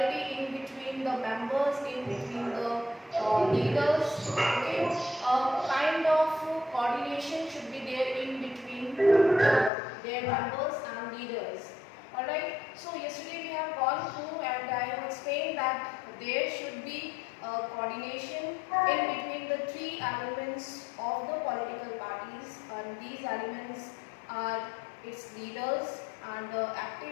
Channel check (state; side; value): drops out; right; at 9.7 s